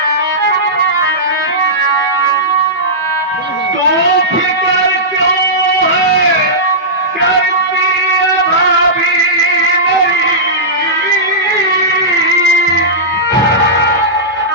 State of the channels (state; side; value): normal; both; correlation -0.15